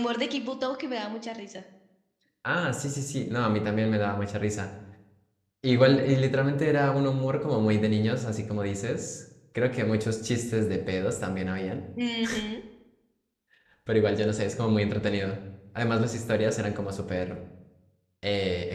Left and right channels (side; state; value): both; identical; correlation 1.00